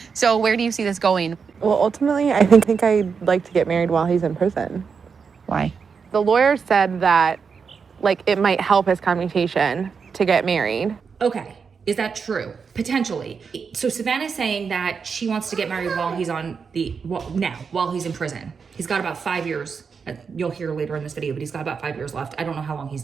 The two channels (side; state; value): left; quieter; 5.8 dB